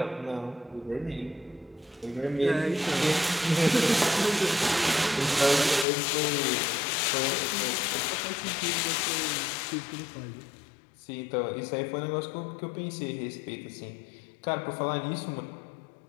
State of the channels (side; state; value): right; drops out; at 5.9 s